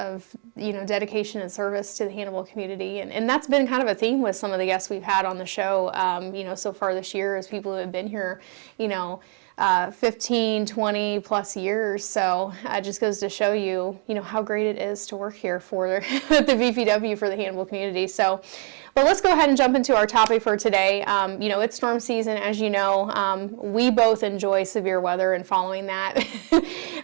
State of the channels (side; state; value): left; quieter; 39.1 dB